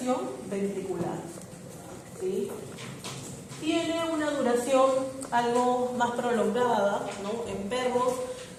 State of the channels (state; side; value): identical; both; correlation 1.00